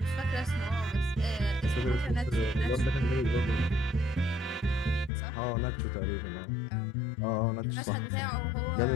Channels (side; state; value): right; drops out; at 5.1 s